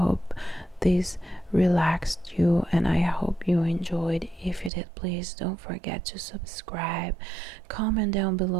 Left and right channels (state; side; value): drops out; left; at 4.7 s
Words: this relaxed you and I hope you enjoyed. If you did, please don't forget to subscribe, comment down